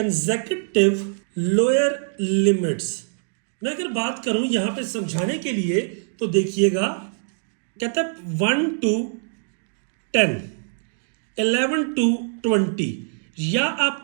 लोअर लिमिट्स। मैं अगर बात करूं यहां पे समझाने के लिए तो देखिएगा, कहता है 1 to 10, 11 to 20, या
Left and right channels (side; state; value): left; silent; digital silence